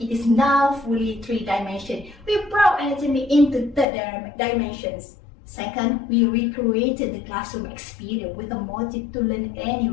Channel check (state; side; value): drops out; right; at 3.9 s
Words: it is now fully 3-dimensional. We brought anatomy into 3 dimensions. Second, we recreated the classroom experience with a motive to learn